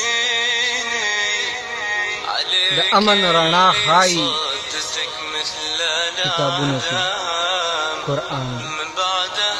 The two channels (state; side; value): identical; both; correlation 1.00